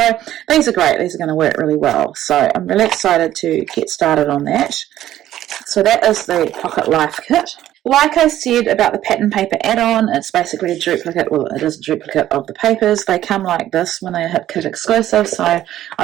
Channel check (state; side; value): quieter; left; 12.8 dB